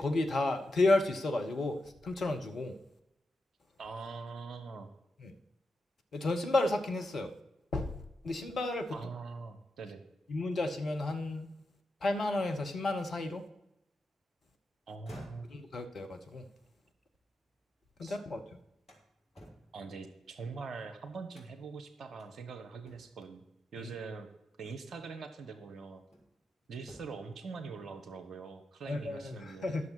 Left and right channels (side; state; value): both; normal; correlation 0.87